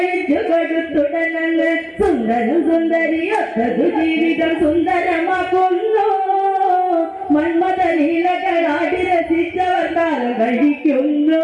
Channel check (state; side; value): identical; both; correlation 1.00